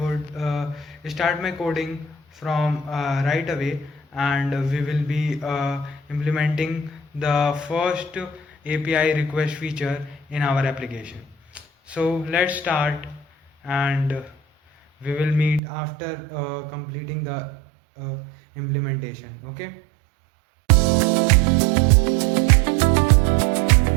start my coding from right away, and we will be implementing the first API request feature in our application. So let's start, and we will meet after completing the uh, implementation. Okay.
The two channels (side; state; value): left; drops out; at 15.6 s